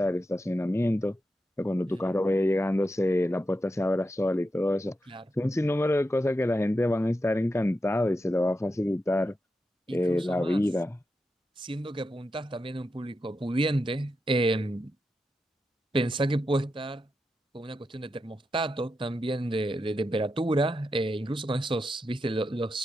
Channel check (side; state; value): both; normal; correlation 0.87